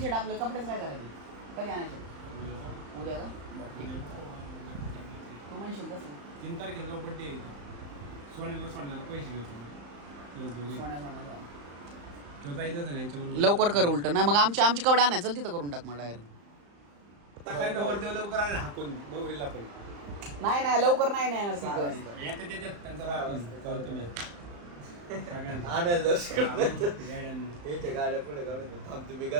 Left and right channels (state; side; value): late; left; 35 ms